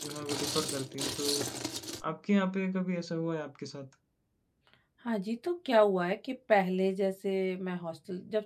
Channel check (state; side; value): identical; both; correlation 1.00